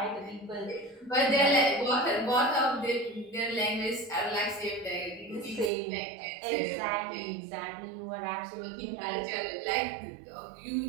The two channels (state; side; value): drops out; left; at 5.7 s